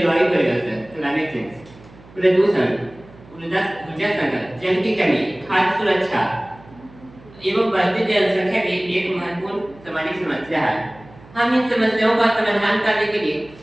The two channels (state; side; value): noise; right; hum, 23 dB below the sound